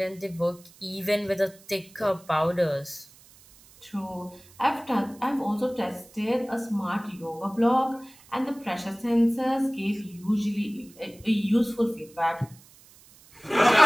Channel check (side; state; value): right; noise; hiss, 25 dB below the sound